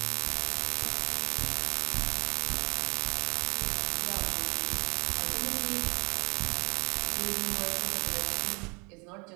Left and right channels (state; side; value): quieter; left; 33.5 dB